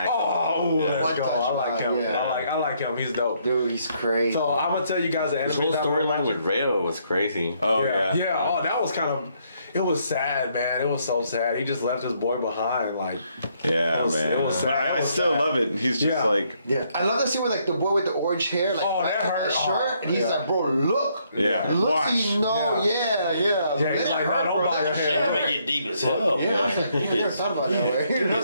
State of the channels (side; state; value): both; inverted; correlation -0.71